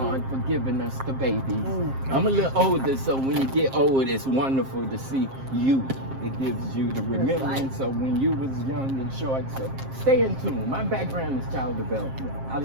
for giving us the babies. I'm a little older, so when you get old, it's wonderful to see you. It gives you the remembrance of when you was young and short. So stay in tune. My background is child development. I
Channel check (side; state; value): left; late; 7.5 ms